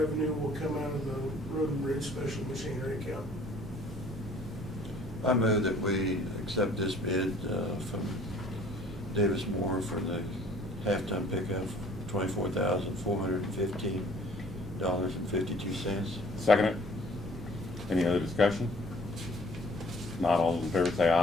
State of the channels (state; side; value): normal; both; correlation 0.55